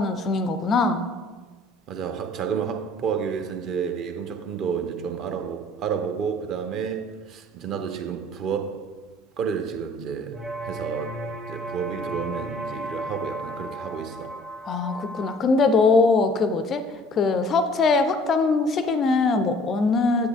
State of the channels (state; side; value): normal; both; correlation 0.53